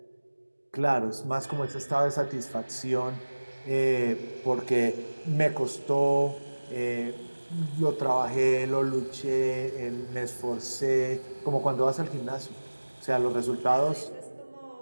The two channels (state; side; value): inverted; both; correlation -1.00